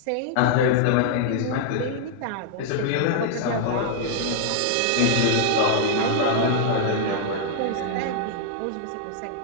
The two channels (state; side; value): different; both; correlation 0.00